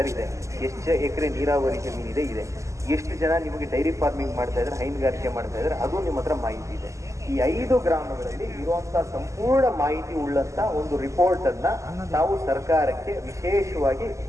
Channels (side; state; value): left; late; 0.15 ms